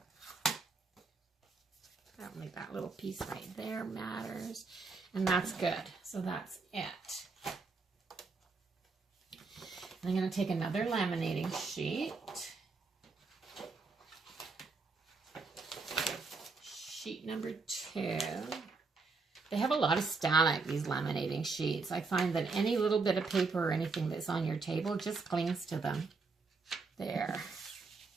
don't think that little piece right there matters. And that's good. So that's it. And I'm going to take another laminating sheet. Sheet number 2. They have a lot of static, these laminating sheets. I find that any little bit of paper or anything that's on your table just clings to them. There.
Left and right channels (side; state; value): left; quieter; 4.3 dB